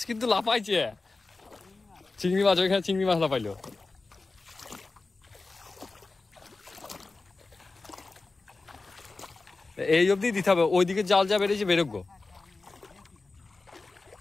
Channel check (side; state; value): right; quieter; 3.6 dB